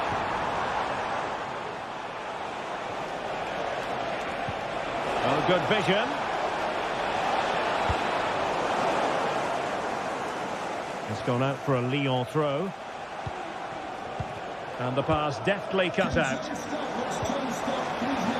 Oh, good vision. It's gone out for a Lyon throw. And the pass deftly cut out.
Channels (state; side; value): identical; both; correlation 1.00